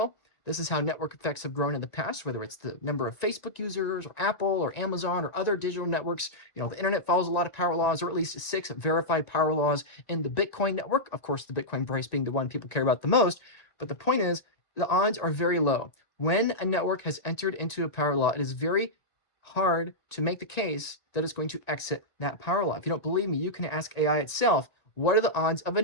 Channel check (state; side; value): late; right; 1.9 ms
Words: This is how network effects have grown in the past, whether it's the number of Facebook users or Apple or Amazon or other digital networks. The internet follows a lot of power laws, or at least 6 verified power laws in the Bitcoin network. Of course, the Bitcoin price being the one people care about the most. But the point is, the odds are very low. When a network has entered into a power law, it is very hard to make the case that it's going to exit that power law. If you don't believe me, you can ask AI itself, what are the odds of a